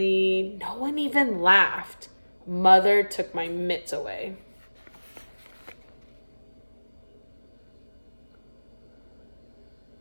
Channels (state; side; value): inverted; both; correlation -1.00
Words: no one even laughed. Mother took my mitts away.